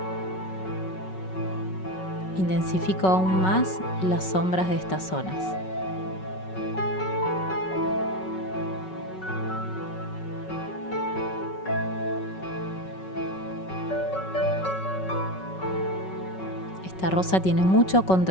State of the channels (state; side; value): late; right; 5.3 ms